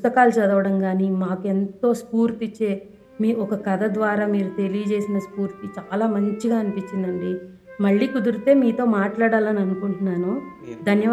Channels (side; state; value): both; identical; correlation 1.00